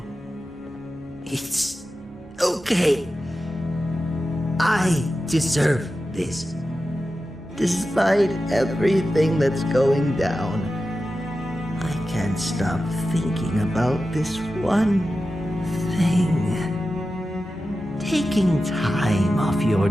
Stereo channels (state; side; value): normal; both; correlation 0.92